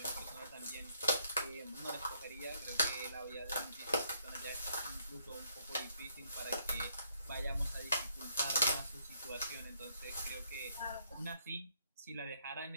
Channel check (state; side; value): inverted; both; correlation -0.70